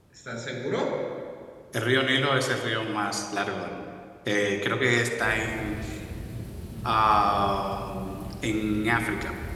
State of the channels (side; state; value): both; identical; correlation 1.00